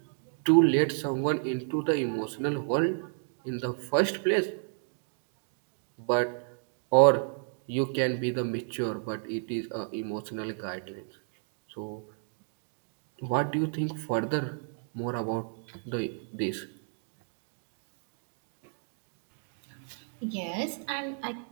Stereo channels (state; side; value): silent; left; 57 dB below the other